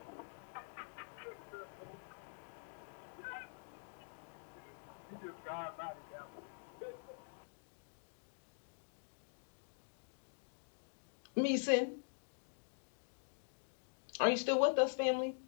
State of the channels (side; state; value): right; silent; digital silence